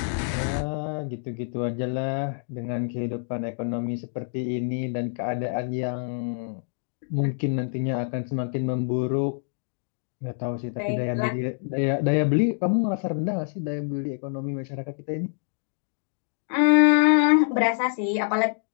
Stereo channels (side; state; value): right; silent; digital silence